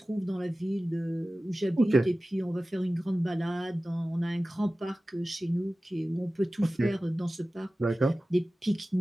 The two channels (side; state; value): both; normal; correlation 0.96